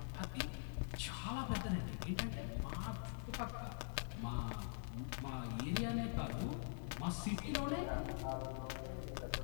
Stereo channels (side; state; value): right; silent; digital silence